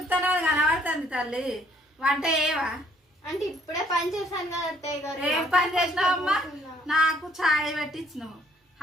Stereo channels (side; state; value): both; normal; correlation 0.63